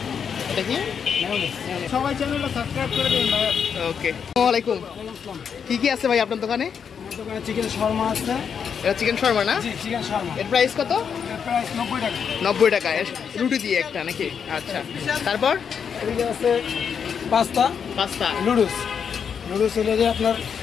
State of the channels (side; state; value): right; quieter; 7.1 dB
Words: দেখি সবাই চ্যানেলটা সাবস্ক্রাইব করে দিন ভাই। ওকে আসসালামু আলাইকুম। কি কি আছে ভাই আপনার দোকানে? আমার দোকানে চিকেন শর্মা আছে। এটা চিকেন শর্মা না? জি চিকেন শর্মা। এর প্রাইস কত? এর প্রাইস 90 টাকা। 90 টাকা রুটি দিয়ে একটা নাকি? আচ্ছা তারপর এদিকে আছে পাস্তা নুডলস হলো যে আপনার